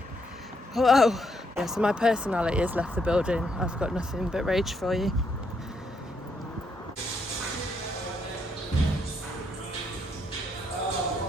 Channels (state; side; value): normal; both; correlation 0.75